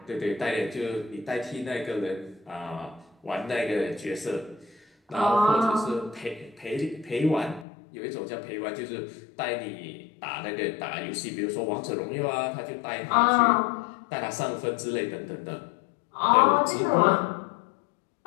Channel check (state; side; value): drops out; right; at 7.7 s